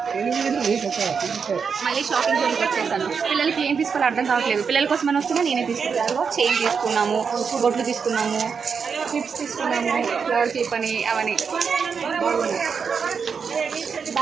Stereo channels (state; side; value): quieter; left; 6.0 dB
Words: మళ్ళీ షాపింగ్ జోలికి వచ్చేసాను. పిల్లలకి ఏం తీసుకోవాలో అర్థం కావట్లేదు. పిల్లల కోసం అని వస్తున్నా నేనే తీసుకున్నాను. చైన్ తీసుకున్నాము, బొట్లు తీసుకున్నాము, క్లిప్స్ తీసుకున్నాము, ఫ్లవర్ క్లిప్ అని అవన్నీ బాగున్నాయి.